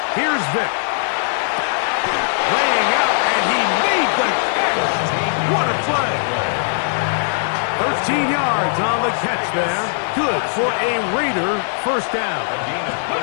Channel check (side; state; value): right; silent; digital silence